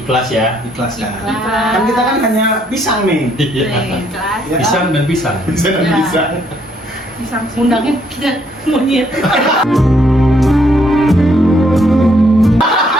ya. ikhlas kan. Ikhlas. Kan kita kan hanya pisang nih. Iya. Kelas. Ya kan? Pisang dan pisang. Pisang dan Ya. pisang. Bisa. Undangnya kita monyet.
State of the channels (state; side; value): normal; both; correlation 0.69